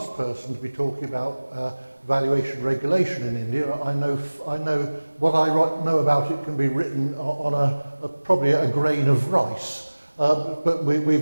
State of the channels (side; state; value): both; inverted; correlation -1.00